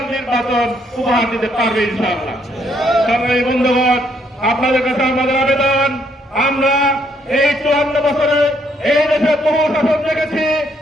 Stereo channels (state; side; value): normal; both; correlation 0.71